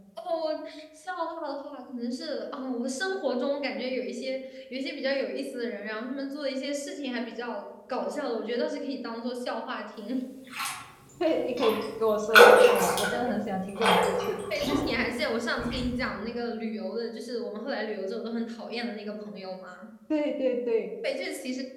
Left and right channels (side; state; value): both; identical; correlation 1.00